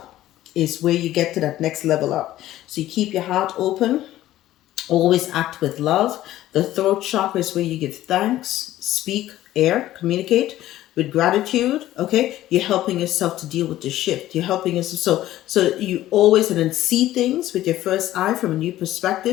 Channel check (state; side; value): quieter; right; 14.3 dB